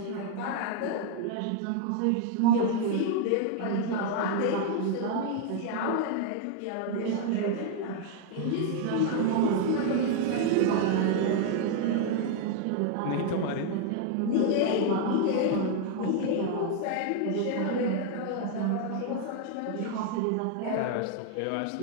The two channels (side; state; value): both; different; correlation 0.00